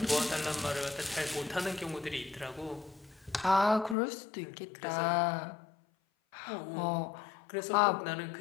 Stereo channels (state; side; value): drops out; right; at 4.0 s